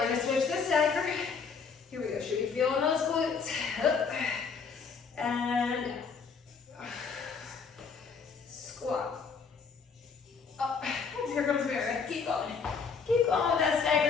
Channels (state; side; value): quieter; right; 5.5 dB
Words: gonna switch the stagger. Here we go, should be feeling those glutes. Up, and squat. Up, here comes Meredith, keep going. Keep going with that